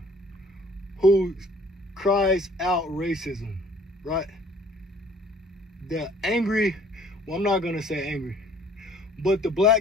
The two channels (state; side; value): normal; both; correlation 0.55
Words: who cries out racism, right? The angry, well, I'm not gonna say angry, but the